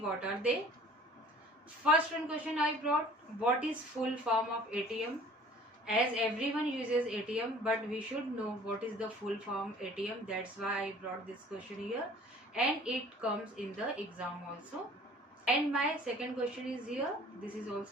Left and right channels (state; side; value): normal; both; correlation 0.50